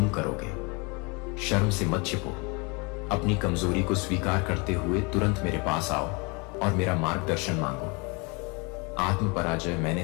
करोगे, शर्म से मत छिपो। अपनी कमजोरी को स्वीकार करते हुए तुरंत मेरे पास आओ और मेरा मार्गदर्शन मांगो। आत्म पराजय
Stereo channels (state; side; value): quieter; right; 30.3 dB